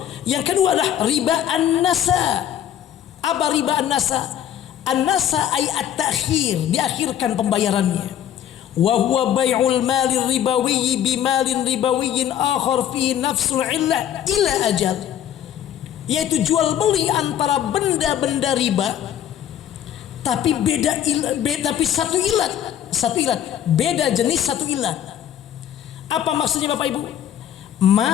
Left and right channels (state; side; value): quieter; right; 10.5 dB